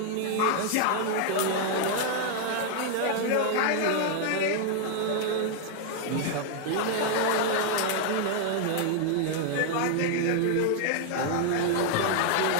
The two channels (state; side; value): different; both; correlation 0.00